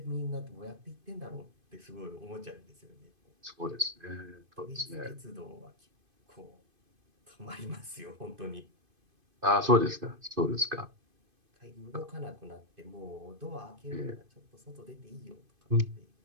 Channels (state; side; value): late; left; 2.5 ms